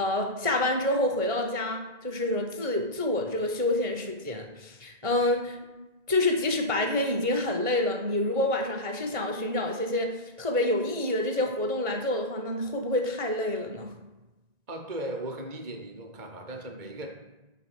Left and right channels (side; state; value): left; late; 1.9 ms